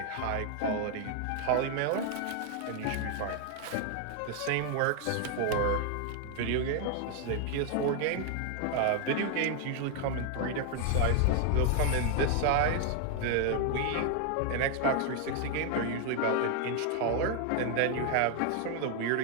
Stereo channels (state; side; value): different; both; correlation 0.00